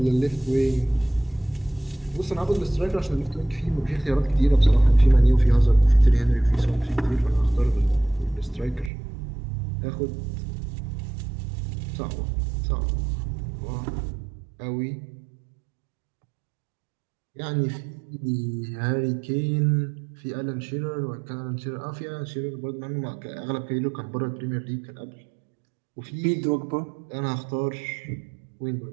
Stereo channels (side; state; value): left; drops out; at 8.9 s